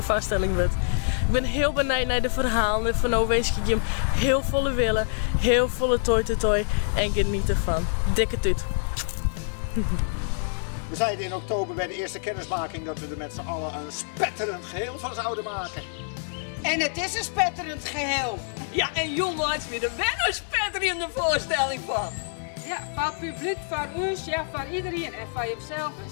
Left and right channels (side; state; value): right; silent; digital silence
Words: vaststelling wordt. Ik ben heel benieuwd naar de verhalen van Owees je hem heel volle willen, heel volle toy en geniet ervan. Dikke tuut. We zeiden in oktober bij de eerste kennismaking dat we er met z'n allen een spetterend geheel van zouden maken. En het is een spetterend geheel. Ja, en jongens, weer wel een spetterende voorstelling van. Ja, van publiek, van ons, ja, van iedereen en van jezelf een